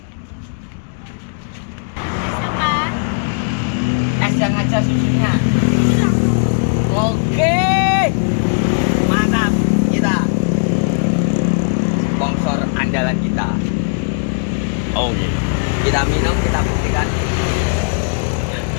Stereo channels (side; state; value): right; silent; digital silence